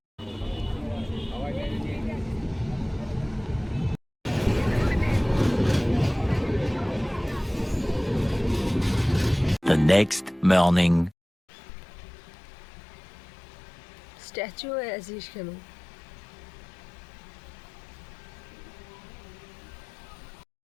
The next morning. স্ট্যাচু হয়ে আছিস কেন?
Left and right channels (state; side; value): drops out; right; at 11.2 s